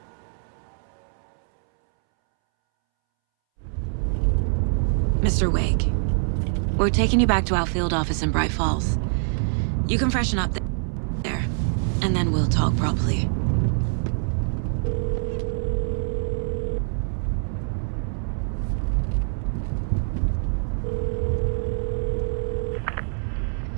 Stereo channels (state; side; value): silent; left; 62 dB below the other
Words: Mr. Wake, we're taking you back to our field office in Bright Falls. You can freshen up there, and then we'll talk properly.